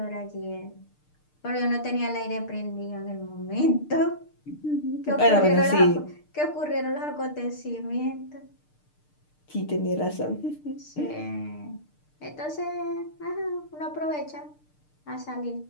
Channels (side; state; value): right; late; 6.6 ms